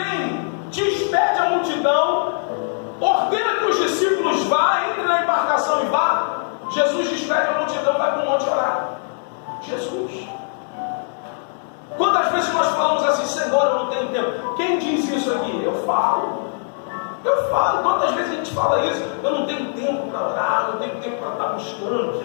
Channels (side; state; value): right; silent; 65 dB below the other